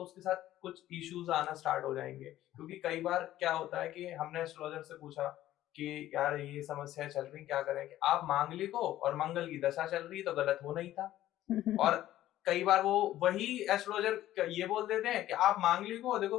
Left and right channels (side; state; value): right; quieter; 13.9 dB